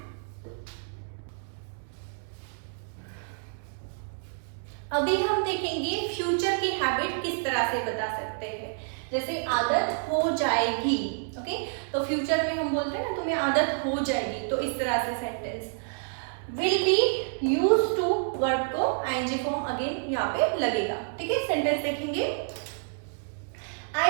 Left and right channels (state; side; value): silent; left; 59 dB below the other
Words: अभी हम देखेंगे फ्यूचर की हैबिट किस तरह से बता सकते हैं। जैसे आदत हो जाएगी, ओके, तो फ्यूचर में हम बोलते हैं ना तुम्हें आदत हो जाएगी, तो इस तरह से sentence will be use to verb को आईएनजी फॉर्म अगेन यहाँ पे लगेगा। ठीक है, सेंटेंस देखेंगे। I